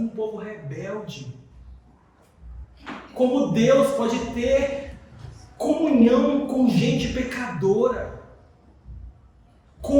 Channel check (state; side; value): identical; both; correlation 1.00